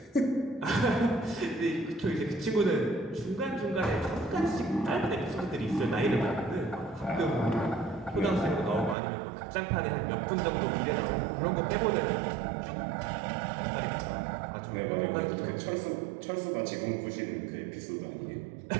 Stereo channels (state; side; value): drops out; left; at 9.0 s